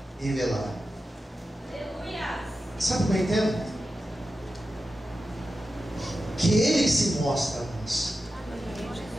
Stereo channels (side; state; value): both; normal; correlation 0.92